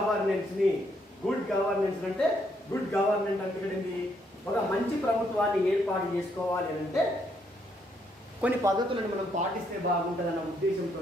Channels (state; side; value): normal; both; correlation 0.73